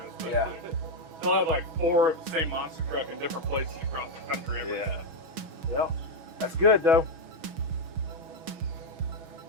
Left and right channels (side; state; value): left; late; 6.2 ms